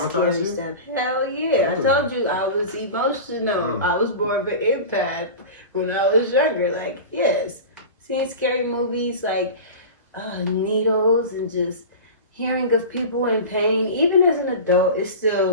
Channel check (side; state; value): both; inverted; correlation -0.31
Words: stuff. Hell yeah. I told you I was emotional. I was more of an empath when I was younger. Like, yes. Seeing scary movies like needles and just hearing of people in pain, even as an adult, it still